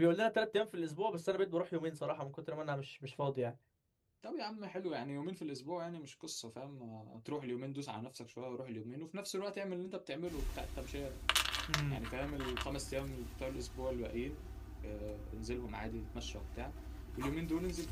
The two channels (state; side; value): identical; both; correlation 1.00